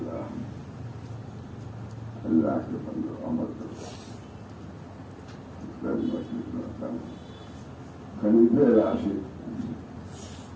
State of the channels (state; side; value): identical; both; correlation 1.00